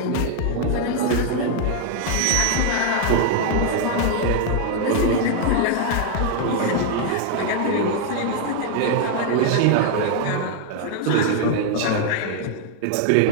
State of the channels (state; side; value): different; both; correlation 0.00